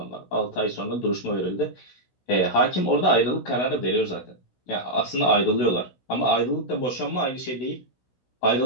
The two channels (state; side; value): late; right; 16 ms